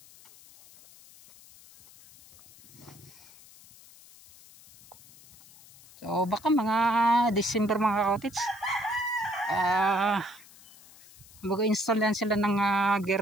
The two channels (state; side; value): noise; left; hiss, 23 dB below the sound